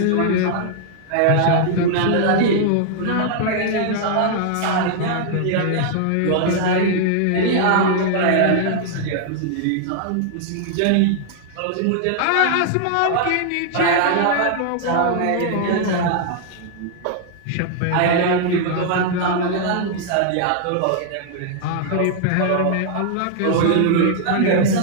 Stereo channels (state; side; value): different; both; correlation -0.01